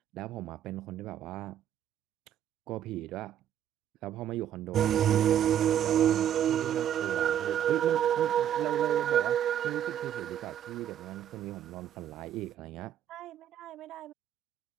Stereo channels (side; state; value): left; quieter; 10.3 dB